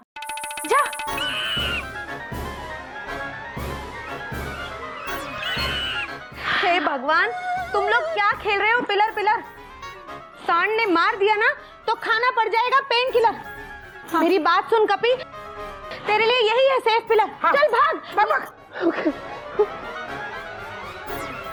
जा। हे भगवान, तुम लोग क्या खेल रहे हो? पिलर पिलर, सांड ने मार दिया ना तो खाना पड़ जाएगा पेन किलर। हाँ। मेरी बात सुन कपी, तेरे लिए यही है सेफ पिलर। हाँ। चल भाग।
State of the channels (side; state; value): both; identical; correlation 1.00